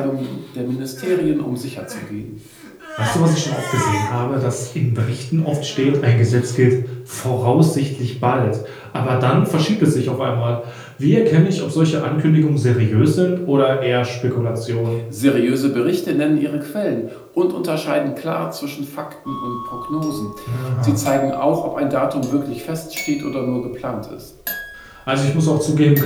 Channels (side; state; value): both; identical; correlation 1.00